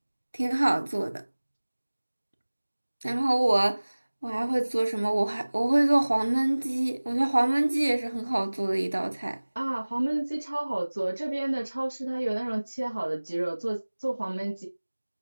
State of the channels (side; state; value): both; inverted; correlation -1.00